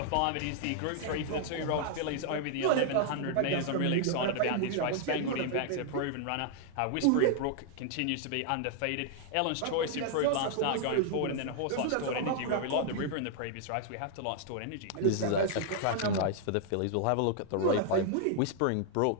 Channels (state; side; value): different; both; correlation -0.01